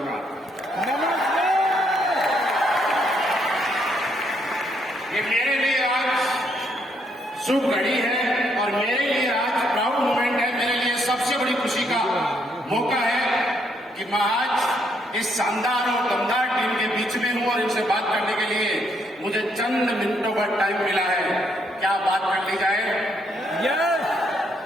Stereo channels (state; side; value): normal; both; correlation 0.73